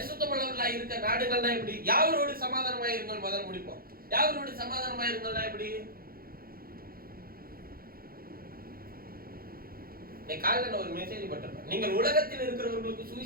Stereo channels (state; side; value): late; left; 0.43 ms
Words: இருக்க நாடுகள்னா எப்படி? யாவரோடு சமாதானமா இருங்கள் முதல்ல முடிப்போம். யாவரோடு சமாதானமா இருங்கள்னா எப்படி? காலையில ஒரு மெசேஜ் போட்டிருப்பேன், நீங்கள் உலகத்தில் இருக்கிறவர்களுக்கு